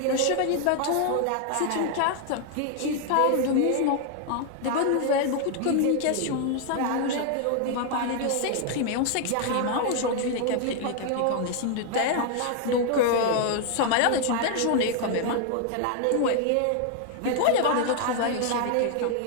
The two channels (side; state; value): both; different; correlation 0.00